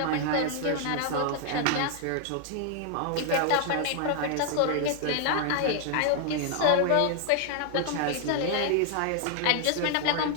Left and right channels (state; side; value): different; both; correlation 0.00